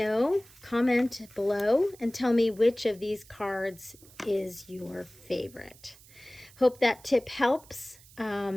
comment below, and tell me which of these cards is your favorite. Hope that tip helps.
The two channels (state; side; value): noise; right; hiss, 24 dB below the sound